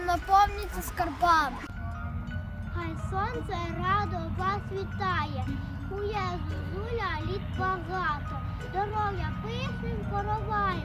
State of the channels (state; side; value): identical; both; correlation 1.00